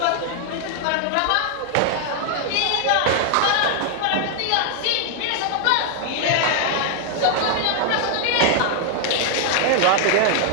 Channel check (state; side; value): different; both; correlation 0.00